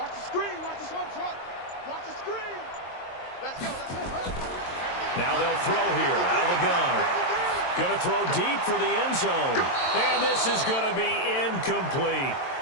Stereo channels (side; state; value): right; late; 22 ms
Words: the screen. Watch the shot. Watch the screen. Let's go. Now they'll throw here out of the gun. Going to throw deep for the end zone. And this is going to be incomplete.